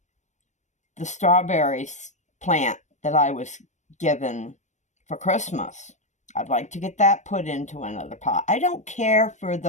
the strawberries plant that I was given for Christmas. I'd like to get that put into another pot. I don't care for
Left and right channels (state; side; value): late; right; 0.34 ms